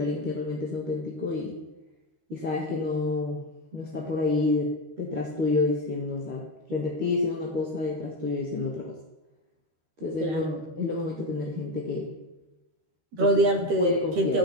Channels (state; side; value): late; left; 13 ms